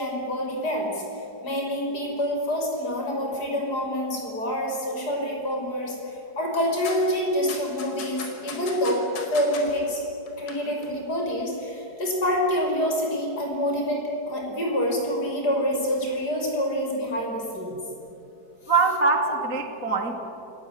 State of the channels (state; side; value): late; right; 4.9 ms